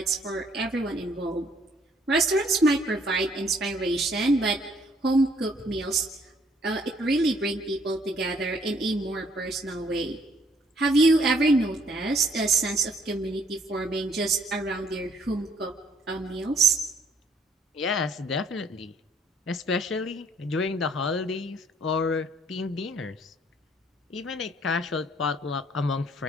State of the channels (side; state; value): both; normal; correlation 0.64